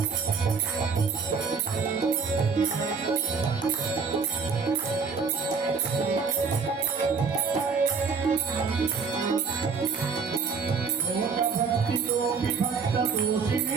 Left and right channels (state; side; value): quieter; left; 5.3 dB